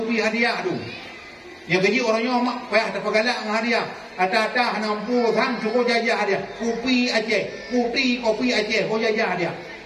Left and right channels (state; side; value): identical; both; correlation 1.00